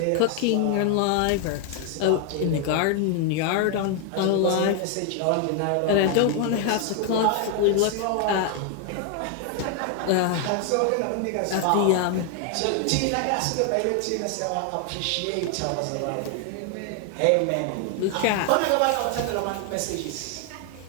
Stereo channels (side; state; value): both; different; correlation 0.00